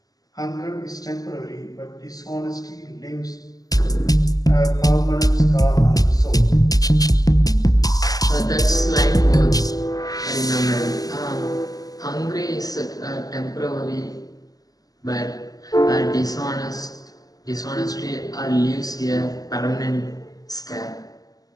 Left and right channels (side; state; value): right; late; 0.17 ms